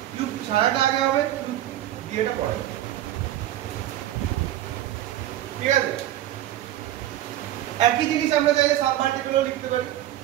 কিউব ছাড়াটা আগে হবে, কিউব দিয়েটা পরে হবে। ঠিক আছে? একই জিনিস আমরা চাইলে সাবমাল্টিপলও লিখতে পারি।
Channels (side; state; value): left; quieter; 13.3 dB